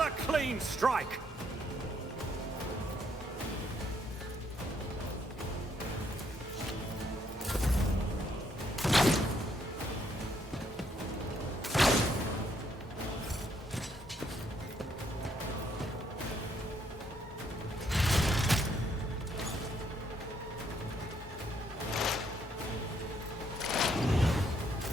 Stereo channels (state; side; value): normal; both; correlation 0.71